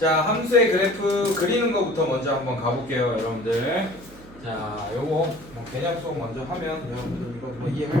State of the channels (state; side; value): noise; right; hum, 20 dB below the sound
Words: 함수의 그래프 그리는 거부터 먼저 한번 가볼게요 여러분들. 자 요거 뭐 개념 수업 먼저 하면 여러분들 이거 뭐